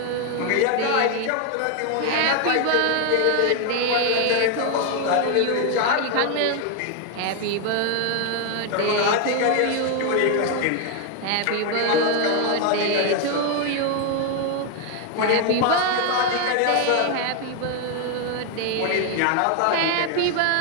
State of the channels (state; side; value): different; both; correlation 0.01